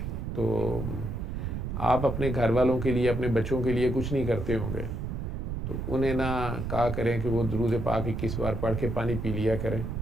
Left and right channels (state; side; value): noise; right; rumble, 4 dB below the sound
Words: تو آپ اپنے گھر والوں کے لیے، اپنے بچوں کے لیے کچھ نہیں کرتے ہوں گے، تو انہیں نہ کہا کریں کہ وہ درود پاک 21 بار پڑھ کے پانی پی لیا کریں،